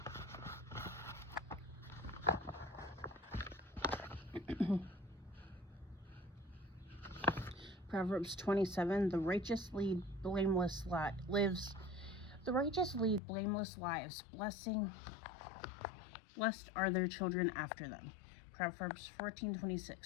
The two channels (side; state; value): right; drops out; at 13.2 s